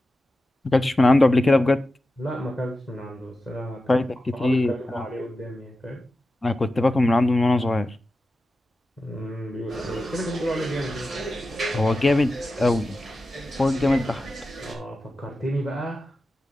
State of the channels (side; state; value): both; normal; correlation 0.92